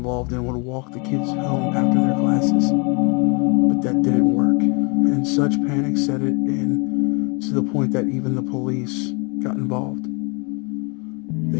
and would walk the kids home after their classes. But that didn't work, and such panic set it in to the point that even the police got involved.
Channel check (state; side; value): quieter; right; 32.4 dB